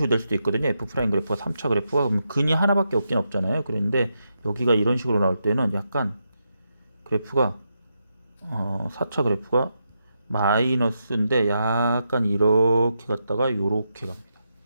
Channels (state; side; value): inverted; both; correlation -0.84